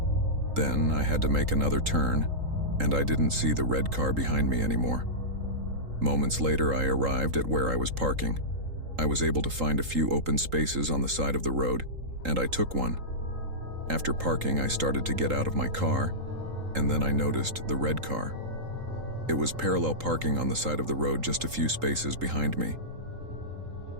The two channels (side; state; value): left; late; 3.8 ms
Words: Then I had to make another turn, and I didn't see the red car behind me anymore. Moments later, I arrived at where I was parking. I was able to find a few open spaces on the side of the road, and I took one. After parking, I started to get out of my car, and then I noticed the red car. It was parallel parking on the side of the road just a few spaces behind me.